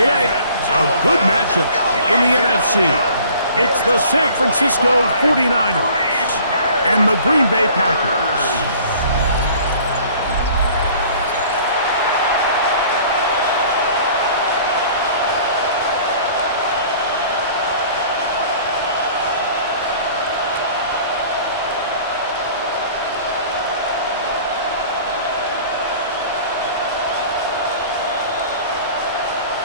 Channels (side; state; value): both; inverted; correlation -0.50